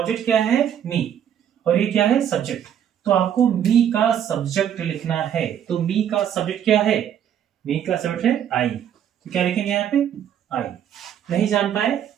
क्या है, मी, और ये क्या है, सब्जेक्ट। तो आपको मी का सब्जेक्ट लिखना है। तो मी का सब्जेक्ट क्या है, मी का सब्जेक्ट है आई। तो क्या लिखेंगे यहाँ पे, आई। नहीं जान पाए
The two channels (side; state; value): left; quieter; 9.6 dB